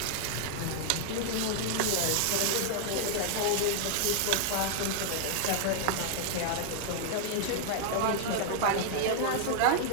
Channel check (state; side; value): different; both; correlation 0.00